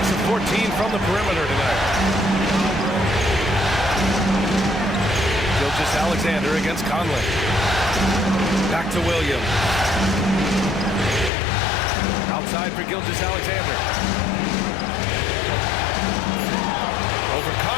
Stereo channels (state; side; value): drops out; right; at 11.3 s